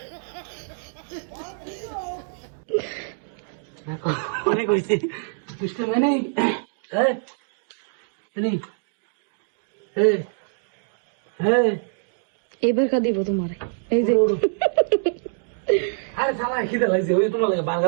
অনেক হয়েছে দুষ্ট মানে এবার খা দিব তোমার, এই যে আরে সালা খিদে লাগছে, ওই তোমার লাগে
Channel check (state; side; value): silent; left; digital silence